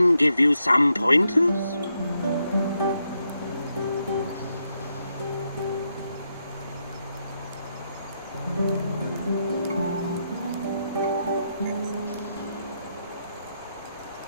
give you some pointers.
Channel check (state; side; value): inverted; both; correlation -0.81